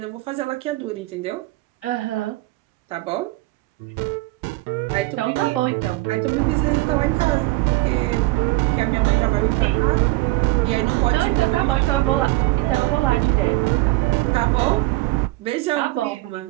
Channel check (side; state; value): left; quieter; 20.6 dB